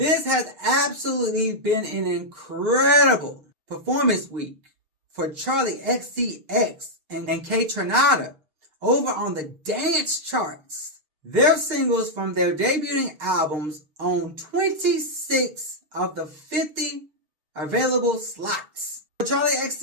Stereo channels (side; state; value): left; late; 6.5 ms